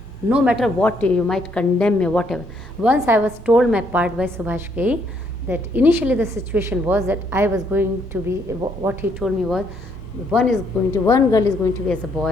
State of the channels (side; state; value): both; normal; correlation 0.70